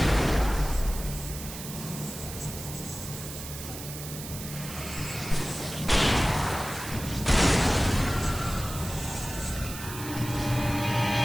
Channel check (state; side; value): noise; right; hiss, 10 dB below the sound